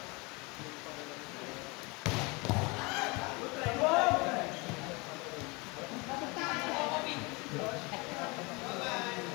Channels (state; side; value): quieter; right; 26.9 dB